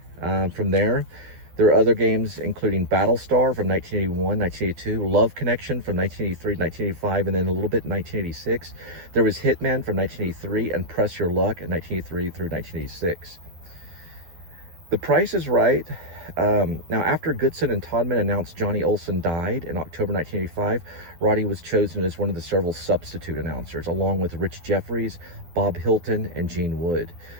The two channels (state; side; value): late; left; 12 ms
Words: From there were other games, including Battlestar from 1981, 1982, Love Connection from 1983 to 1985, and then a little bit in 1986. There was Hitman from 1983 and Press Your Luck in 1983 through 1986. The Price is Right. Now, after Goodson and Todman announced Johnny Olson died in October 1985, Roddy was chosen as one of the several substitute announcers, along with Rich Jeffries, Bob Hilton, and Gene Wood,